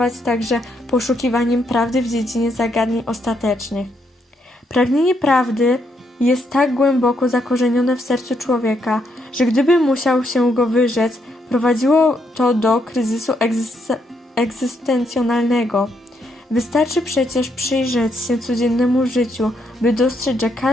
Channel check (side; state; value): both; normal; correlation 0.76